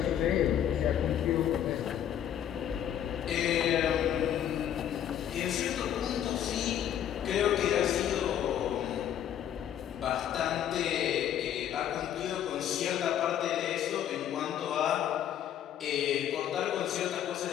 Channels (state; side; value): quieter; right; 10.2 dB